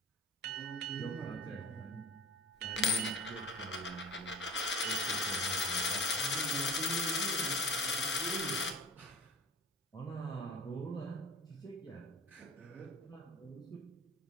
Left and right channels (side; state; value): both; normal; correlation 0.36